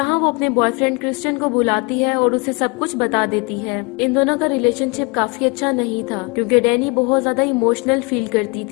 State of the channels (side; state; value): right; quieter; 29.7 dB